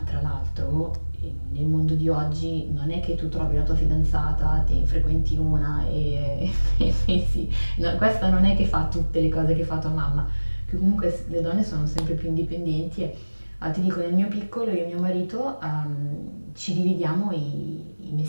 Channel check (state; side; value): inverted; both; correlation -1.00